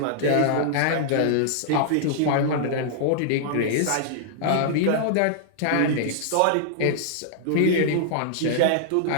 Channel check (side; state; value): both; different; correlation -0.01